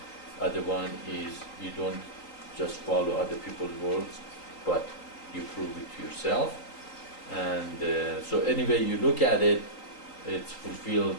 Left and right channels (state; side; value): late; right; 3.8 ms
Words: Other one is you don't just follow other people's words, but you prove it to yourself. And so anyway you look at it, it's fulfilled